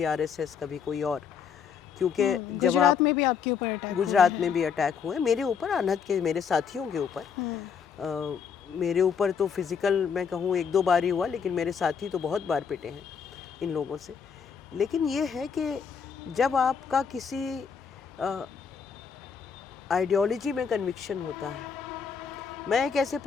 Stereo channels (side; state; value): right; quieter; 6.7 dB